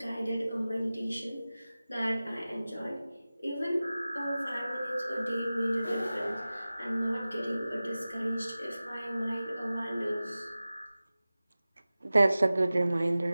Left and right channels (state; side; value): inverted; both; correlation -0.97